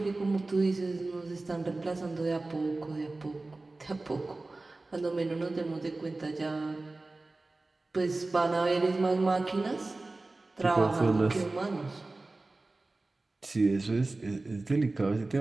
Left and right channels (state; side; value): quieter; left; 3.2 dB